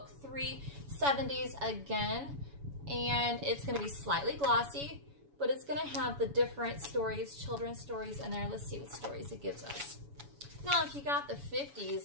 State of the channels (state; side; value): late; left; 7.1 ms